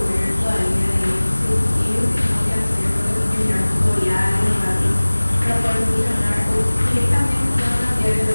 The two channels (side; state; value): both; inverted; correlation -1.00